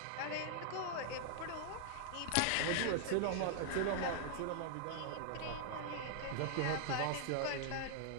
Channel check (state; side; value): different; both; correlation 0.00